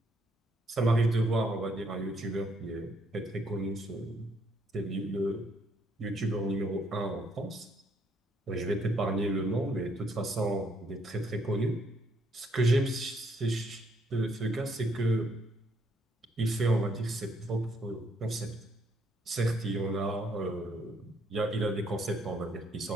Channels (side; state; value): both; normal; correlation 0.71